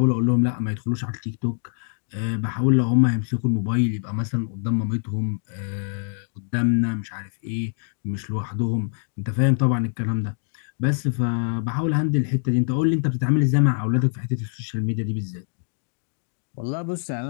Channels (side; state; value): right; silent; digital silence